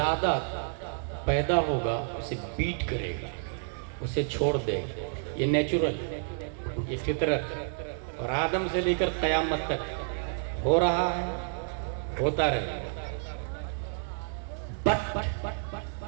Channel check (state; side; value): silent; left; digital silence